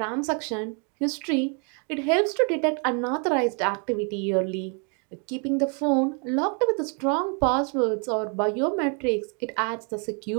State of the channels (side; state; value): left; quieter; 38.0 dB